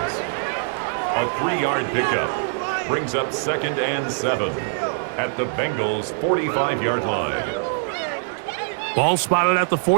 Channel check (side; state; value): left; silent; 57 dB below the other